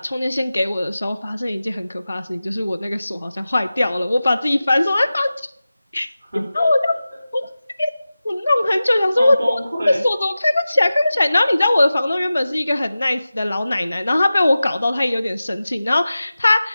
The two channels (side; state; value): both; inverted; correlation -0.95